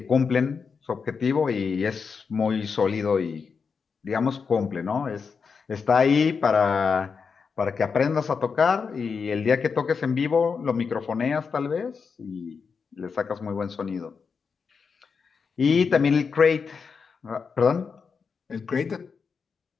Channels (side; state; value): right; quieter; 5.6 dB